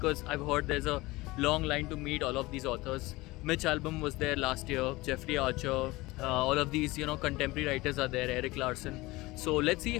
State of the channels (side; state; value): right; quieter; 20.8 dB